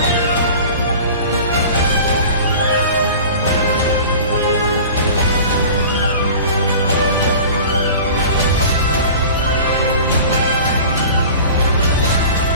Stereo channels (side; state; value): both; inverted; correlation -0.40